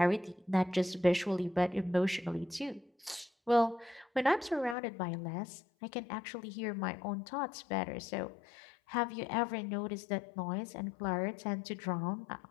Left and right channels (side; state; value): right; drops out; at 4.8 s